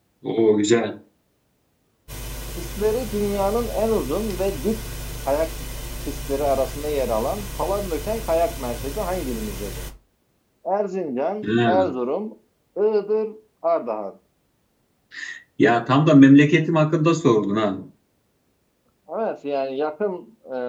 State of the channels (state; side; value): identical; both; correlation 1.00